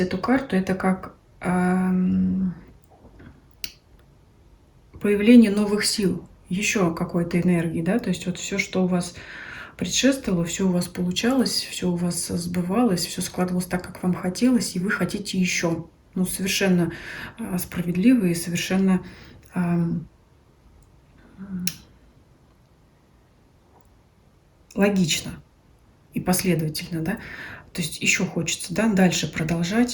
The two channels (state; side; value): identical; both; correlation 1.00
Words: карту, это как появление новых сил, еще какой-то энергии, да, то есть вот все, что у вас предшествовало, все у вас получалось, все у вас сбывалось, все складывалось так, как вам хотелось, и вы хотите еще. Ну, совершенно справедливо и совершенно логично и последовательно, да. То есть еще хочется, да, дальше